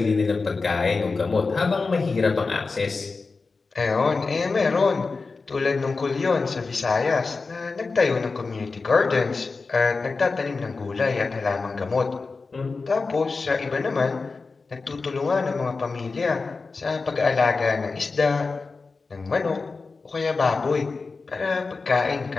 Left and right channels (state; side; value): quieter; right; 4.2 dB